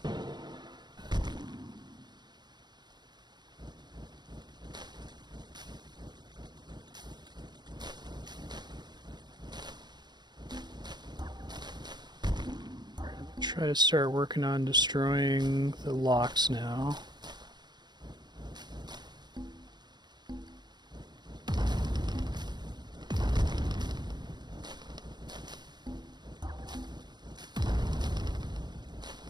Try to start working on destroying the locks now.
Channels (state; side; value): late; left; 0.21 ms